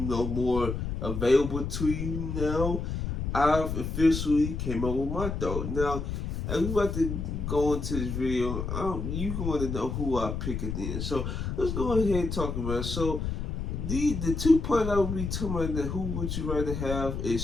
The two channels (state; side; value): noise; left; rumble, 3 dB below the sound